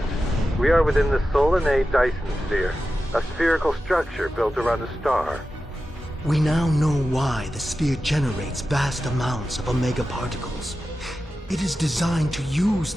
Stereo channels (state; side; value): normal; both; correlation 0.92